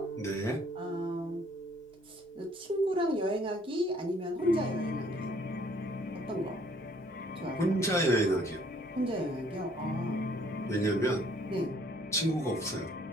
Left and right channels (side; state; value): both; normal; correlation 0.61